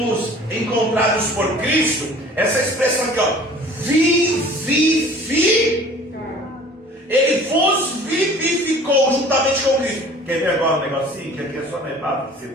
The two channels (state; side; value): normal; both; correlation 0.48